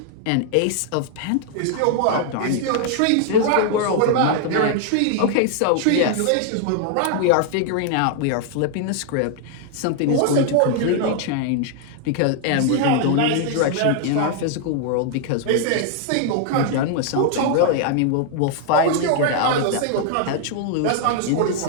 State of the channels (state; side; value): different; both; correlation 0.00